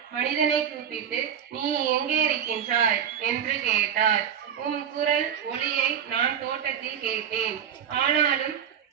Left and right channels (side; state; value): left; quieter; 8.6 dB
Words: மனிதனை கூப்பிட்டு, நீ எங்கே இருக்கின்றாய் என்று கேட்டார். உம் குரல் ஒலியை நான் தோட்டத்தில் கேட்டேன்.